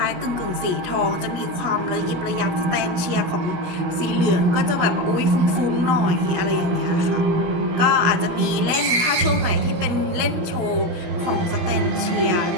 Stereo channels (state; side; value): late; left; 17 ms